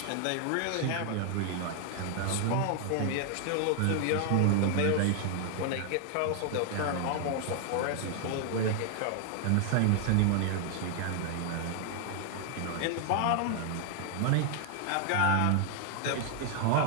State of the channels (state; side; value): different; both; correlation 0.00